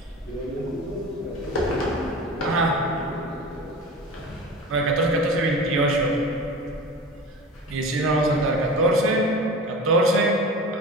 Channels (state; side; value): normal; both; correlation 0.34